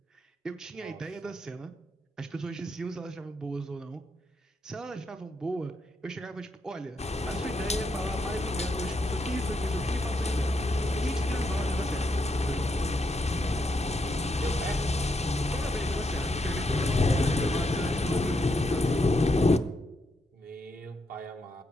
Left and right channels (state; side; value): normal; both; correlation 0.80